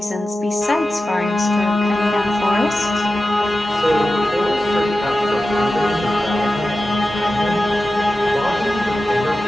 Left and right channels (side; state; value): both; normal; correlation 0.93